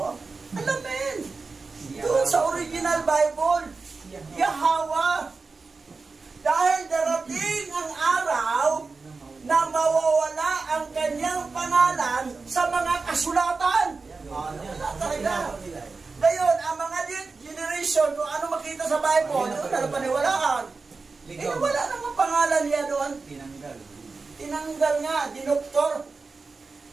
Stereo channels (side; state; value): left; quieter; 4.2 dB